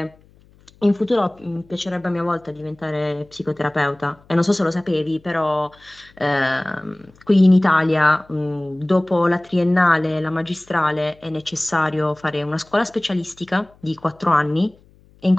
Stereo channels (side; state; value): left; noise; hum, 29 dB below the sound